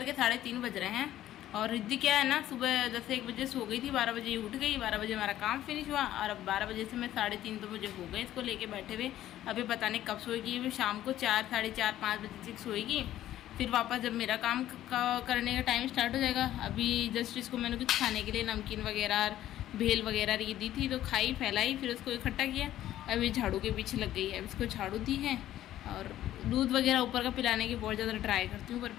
के 3:30 बज रहे हैं और रिद्धि क्या है ना, सुबह जैसे 1 बजे सो गई थी, 12 बजे उठ गई, 12 बजे हमारा काम फिनिश हुआ और अब 12 बजे से मैं 3:30 तो मुझे हो गए इसको लेके बैठे हुए। अभी पता नहीं कब सोएगी, अभी शाम को 4, साढ़े 4, 5 बजे तक सोएगी, फिर वापस जब मेरा काम करने का टाइम स्टार्ट हो जाएगा। अभी जस्ट इसको मैंने कुछ खाने के लिए नमकीन वगैरह, भेल वगैरह ये दी थी तो खाई, फैलाई, फिर उसको इकट्ठा किया। अभी झाड़ू के पीछे लग गई है, अब इसको झाड़ू दी है और दूध वगैरह ऊपर का पिलाने की बहुत ज़्यादा ट्राई करती हूँ पर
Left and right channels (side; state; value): right; quieter; 13.1 dB